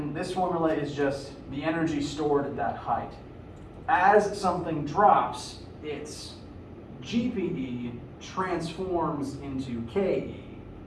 this formula is just the energy stored at that height. As something drops, its GPE transforms into KE.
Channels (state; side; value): identical; both; correlation 1.00